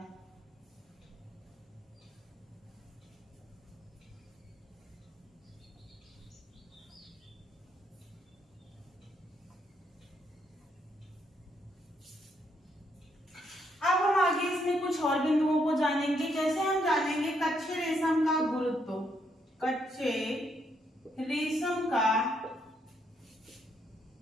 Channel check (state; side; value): normal; both; correlation 0.74